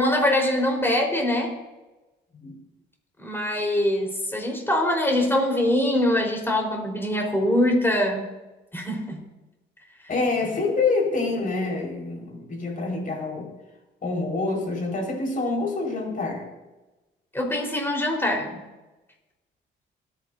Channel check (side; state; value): both; normal; correlation 0.55